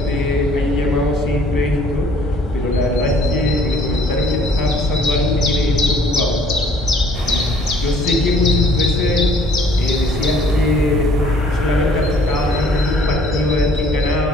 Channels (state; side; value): normal; both; correlation 0.58